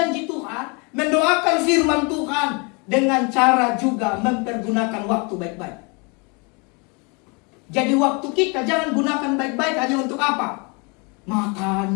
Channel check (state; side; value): quieter; right; 31.6 dB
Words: Tuhan, mendoakan firman Tuhan dengan cara juga mempergunakan waktu baik-baik. Jadi waktu kita jangan gunakan baik-baik hanya untuk apa? Makan,